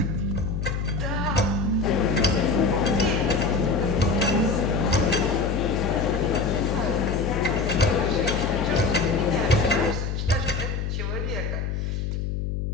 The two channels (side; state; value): left; noise; hum, 2 dB below the sound